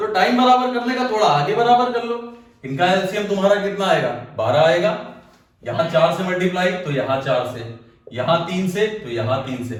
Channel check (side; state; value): both; identical; correlation 1.00